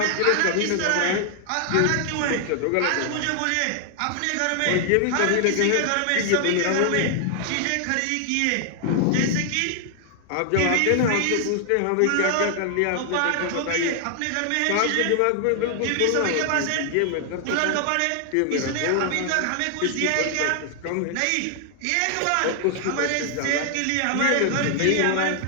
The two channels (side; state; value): both; different; correlation 0.00